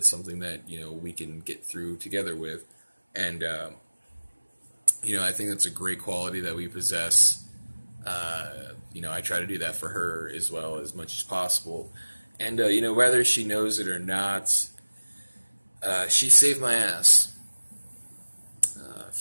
something that, we can get through together with. And, I think that's a great quality that we possess. I try to do that for her as well as much as possible. And, whether she knows it or not, she saved my ass.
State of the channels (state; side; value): inverted; both; correlation -1.00